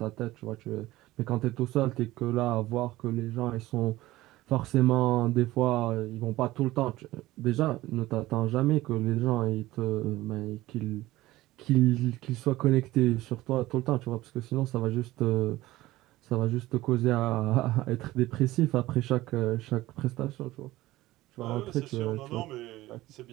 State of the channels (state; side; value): quieter; left; 17.3 dB